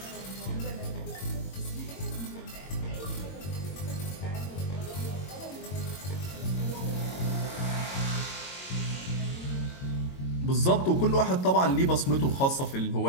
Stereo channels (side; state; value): right; late; 22 ms